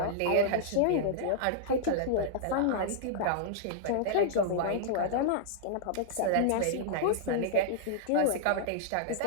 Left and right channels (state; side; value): different; both; correlation -0.01